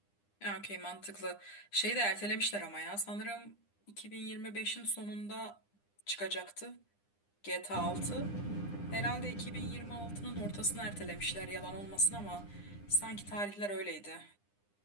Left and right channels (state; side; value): late; right; 9.9 ms